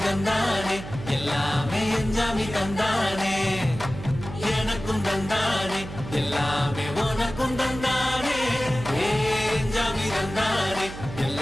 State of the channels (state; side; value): noise; right; hum, 11 dB below the sound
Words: தந்தானே எல்லாமே எஞ்சாமி தந்தானே எனக்கும் தந்தானே எல்லாமே உனக்கும் தந்தானே எஞ்சாமி தந்தானே